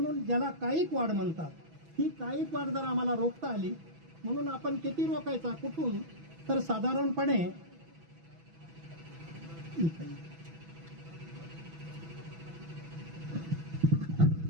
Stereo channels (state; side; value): late; left; 6.1 ms